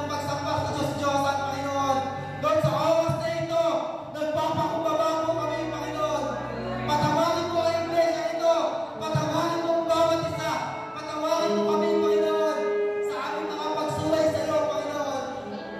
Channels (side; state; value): both; identical; correlation 1.00